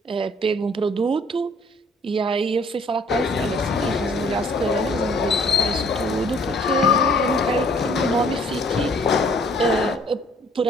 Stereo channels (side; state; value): both; normal; correlation 0.59